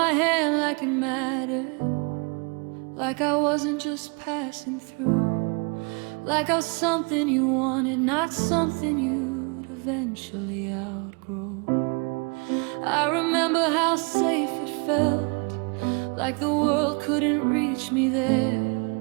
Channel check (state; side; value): quieter; left; 32.8 dB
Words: hand like it mattered, like I wasn't just passing through, like I was something you wanted, not something you'd eventually outgrow. I remember how safe it felt, like the world couldn't reach me there.